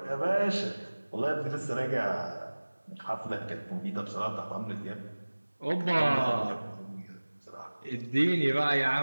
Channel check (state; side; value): inverted; both; correlation -1.00